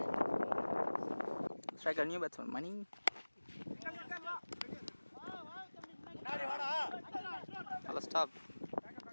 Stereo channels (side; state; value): both; inverted; correlation -1.00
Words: Striker new batsman Mani. நல்ல ஸ்டாப்.